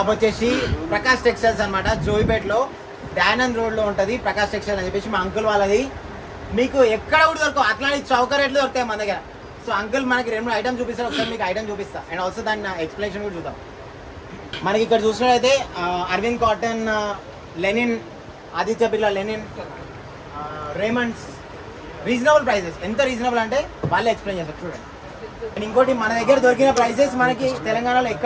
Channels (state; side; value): identical; both; correlation 1.00